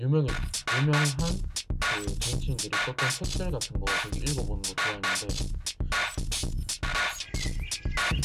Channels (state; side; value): identical; both; correlation 1.00